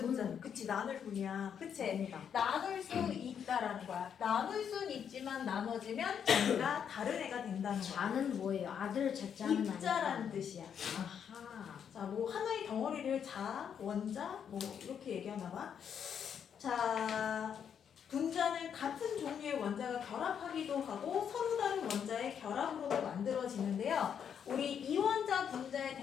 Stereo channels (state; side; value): quieter; right; 8.0 dB